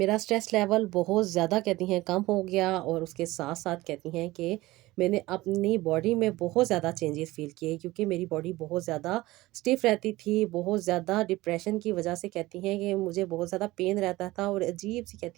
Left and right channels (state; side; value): quieter; left; 18.7 dB